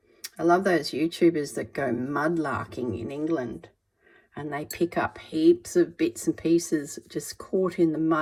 I love those YouTubers that go mudlarking in England and they pick up heaps of bits and pieces just caught in the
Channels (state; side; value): identical; both; correlation 1.00